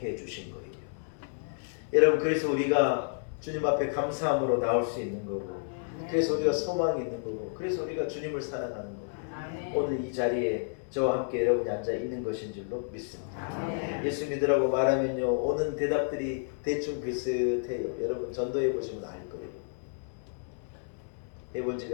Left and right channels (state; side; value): silent; right; 57 dB below the other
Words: 주신 거예요. 여러분 그래서 우리가 주님 앞에 감사함으로 나올 수 있는 거고 그래서 우리가 소망이 있는 거고 그래서 우리가 주님을 사랑하는 거고 오늘 이 자리에 저와 함께 여러분이 앉아 있는 것인 줄로 믿습니다. 예수 믿으라고 말하면요 오는 대답들이 대충 비슷해요. 여러분 전도해 보시면 알 거예요. 해본